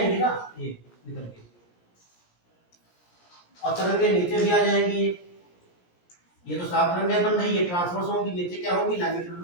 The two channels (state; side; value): late; right; 17 ms